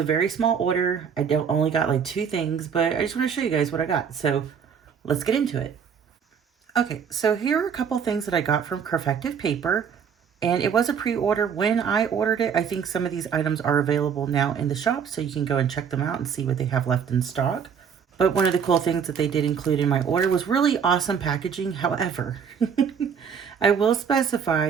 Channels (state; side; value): quieter; left; 7.1 dB